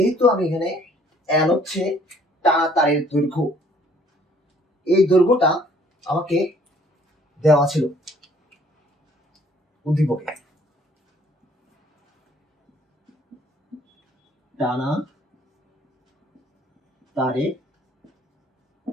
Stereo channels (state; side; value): normal; both; correlation 0.60